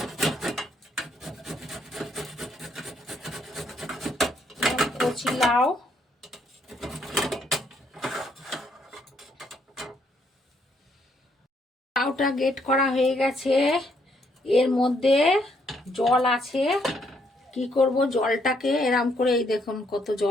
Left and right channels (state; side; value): normal; both; correlation 0.72